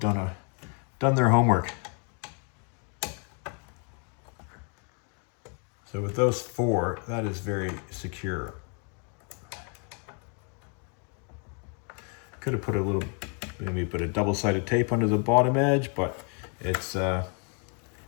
their homework. So with those 4, that is very secure. Could have put a little, maybe put a double-sided tape under the bottom edge, but it's the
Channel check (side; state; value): right; quieter; 38.9 dB